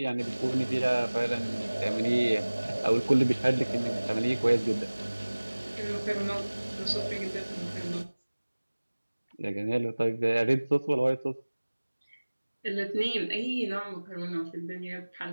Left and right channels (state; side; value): inverted; both; correlation -1.00